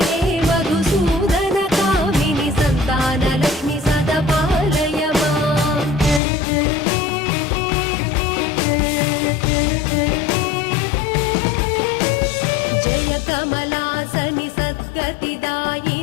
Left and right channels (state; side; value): drops out; right; at 6.2 s